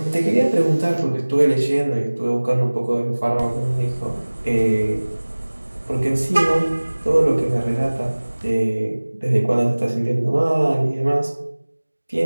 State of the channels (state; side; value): inverted; both; correlation -1.00